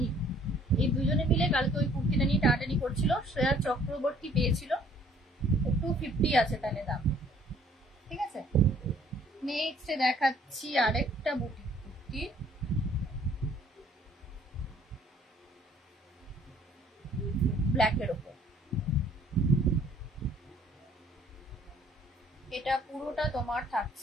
এই দুজনে মিলে কালকে ওই কুর্তিটা নিয়ে টাটানি করছিল, শ্রেয়া চক্রবর্তী পেয়েছিল। 250 আছে তাহলে দাম, ঠিক আছে। নেক্সট দেখাচ্ছি আরেকটা বুটিক কুর্তি, ব্ল্যাকের ওপর। এটা পুরোটা তোমার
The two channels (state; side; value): normal; both; correlation 0.59